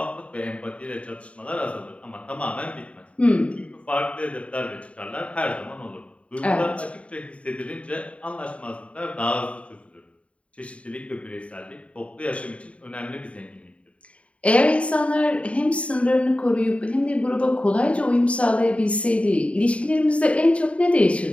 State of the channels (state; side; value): late; right; 0.063 ms